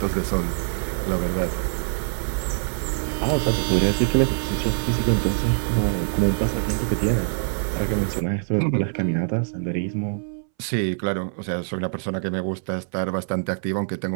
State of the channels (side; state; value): left; silent; 62 dB below the other